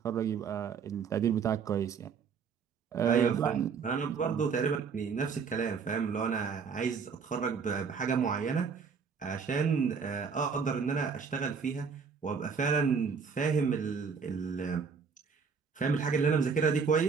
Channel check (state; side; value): quieter; left; 5.8 dB